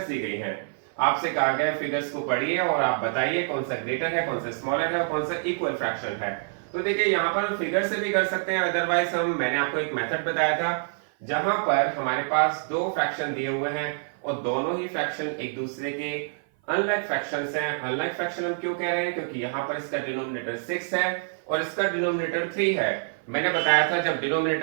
दी गई हैं। आपसे कहा गया फिगर्स को पढ़िए और आप बताइए कौन सा ग्रेटर है, कौन सा स्मॉलर है और कौन सा इक्वल फ्रैक्शन है। तो देखिए यहाँ पर हम फिगर से भी कर सकते हैं, अदरवाइज मैंने आपको एक मेथड बताया था जहां पर हमारे पास दो फ्रैक्शन दिए हुए हैं और दोनों ही फ्रैक्शन एक दूसरे के अनलाइक फ्रैक्शंस हैं। अनलाइक फ्रैक्शन हम क्यों कह रहे हैं? क्योंकि यहाँ पर इसका डिनोमिनेटर 6 है और इसका डिनोमिनेटर 3 है। मैंने बताया था जब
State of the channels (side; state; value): left; silent; 56 dB below the other